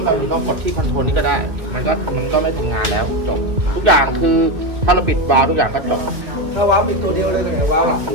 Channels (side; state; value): left; late; 1.9 ms